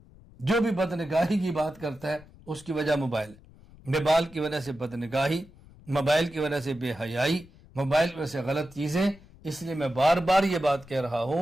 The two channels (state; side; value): noise; left; rumble, 23 dB below the sound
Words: جو بھی بد نگاہی کی بات کرتا ہے اس کی وجہ موبائل ہے۔ موبائل کی وجہ سے بد نگاہی، موبائل کی وجہ سے بے حیائی، موبائل کی وجہ سے غلط چیزیں۔ اس لیے میں بار بار یہ بات کہہ رہا